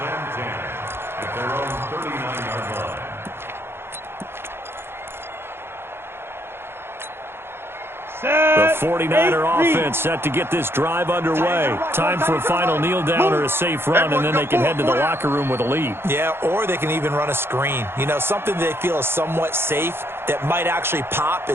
10 at their own 39-yard line. The 49er offense set to get this drive underway. Time for a final kneel down or a safe run, and then they can head to the locker room with a lead. Yeah, or they can even run a screen. You know, something they feel is somewhat safe that might actually pop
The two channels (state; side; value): late; left; 0.11 ms